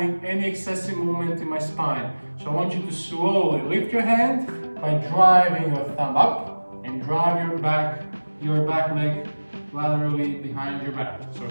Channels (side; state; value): both; inverted; correlation -1.00